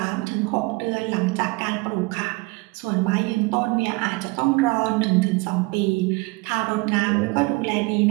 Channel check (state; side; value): quieter; left; 25.8 dB